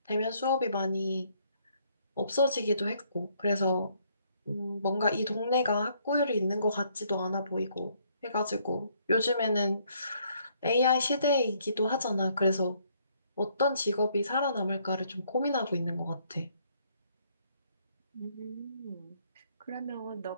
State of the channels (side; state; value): both; inverted; correlation -0.68